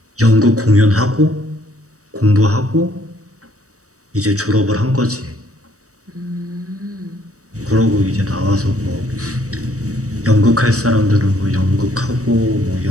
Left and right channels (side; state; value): left; late; 0.65 ms